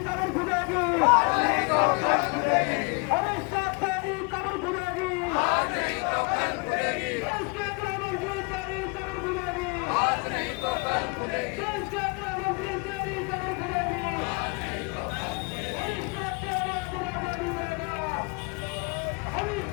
कब्र खुदेगी, अमित शाह तेरी कब्र खुदेगी, देश के गृह मंत्री तेरी कब्र खुदेगी, देश के गृह मंत्री तेरी कब्र खुदेगी। अमित शाह तेरा दुराजा नहीं मिलेगा, अमित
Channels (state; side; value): quieter; right; 32.1 dB